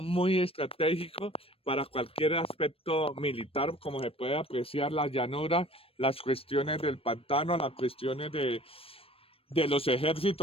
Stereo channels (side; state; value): right; late; 0.28 ms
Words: estratégico para cualquier aspecto militar, como se puede apreciar la llanura, las cuestiones del pantano, las cuestiones de los